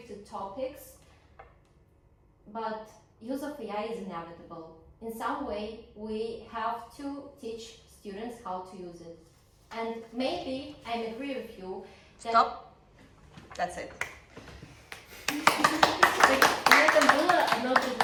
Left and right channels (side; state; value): both; identical; correlation 1.00